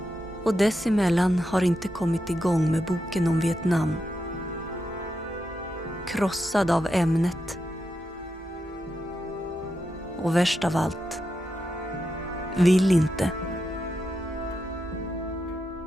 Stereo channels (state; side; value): normal; both; correlation 0.86